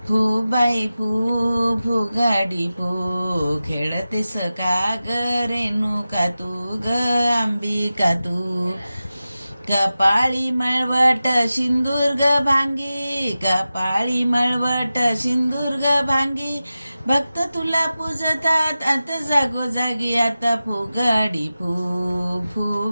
फू बाई फू फुगडी फू, खेळते सका ग रेणुका तू ग अंबिका तू. कपाळी मळवट सिंदूर ग भांगी, कपाळी मळवट सिंदूर ग भांगी, भक्त तुला पूजतात आता जागोजागी. आता फुगडी फू फू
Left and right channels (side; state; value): both; inverted; correlation -0.94